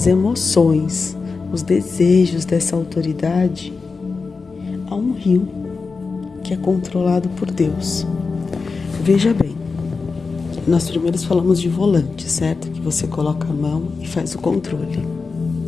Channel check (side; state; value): right; quieter; 4.5 dB